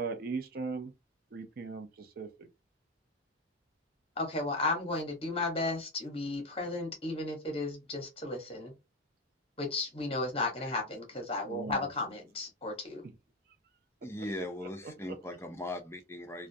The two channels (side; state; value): both; normal; correlation 0.15